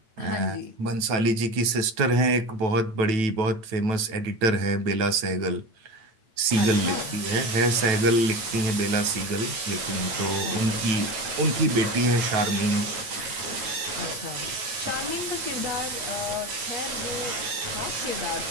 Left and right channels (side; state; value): left; late; 9.1 ms